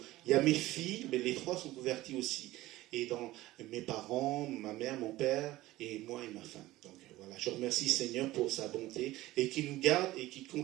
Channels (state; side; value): quieter; left; 17.1 dB